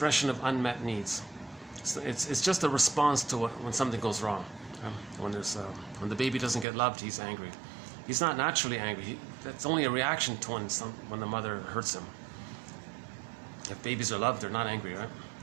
of unmet needs. It's just a response to when something goes wrong. When the baby doesn't get loved, he's angry. He's not naturally angry. That's only a reaction to when the mother hurts him. If babies are loved, they're not angry, right?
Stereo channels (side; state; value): left; drops out; at 6.7 s